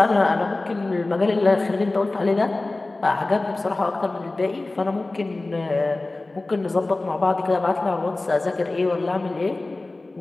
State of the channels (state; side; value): quieter; right; 3.1 dB